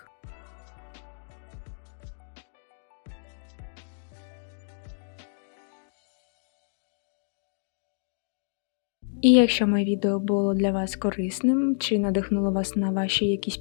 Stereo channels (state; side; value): silent; right; digital silence